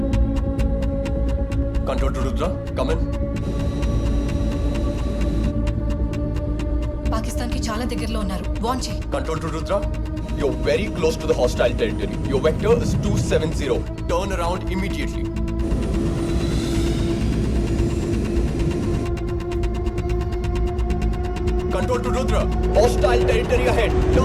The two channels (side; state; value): both; identical; correlation 1.00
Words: Control to Rudra, come in. పాకిస్తాన్కి చాలా దగ్గరలో ఉన్నారు. వార్న్ చేయి. Control to Rudra, you're very close to the hostile territory. Your vector is 270. Turn around immediately. Control to Rudra, hostile territory ahead.